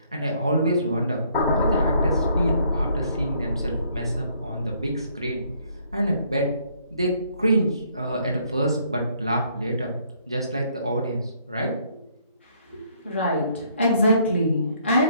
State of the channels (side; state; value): both; inverted; correlation -0.66